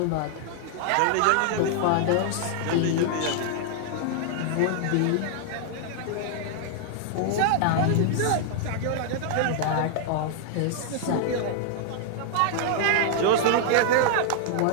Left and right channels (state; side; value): different; both; correlation -0.01